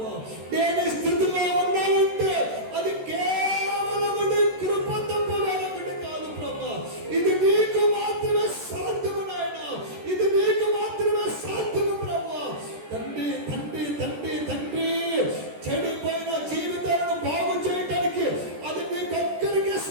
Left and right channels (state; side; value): late; left; 14 ms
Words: నేను ఈ స్థితిలో ఉండాలంటే అది కేవలం కృప తప్ప వేరొకటి కాదు ప్రభువా. ఇది నీకు మాత్రమే సాధ్యము నాయన, ఇది నీకు మాత్రమే సాధ్యము ప్రభువా. తండ్రి తండ్రి తండ్రి తండ్రి, చెడిపోయిన జీవితాలను బాగు చేయడానికి అది నీకొక్కరికి